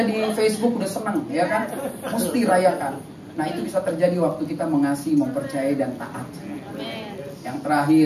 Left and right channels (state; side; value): identical; both; correlation 1.00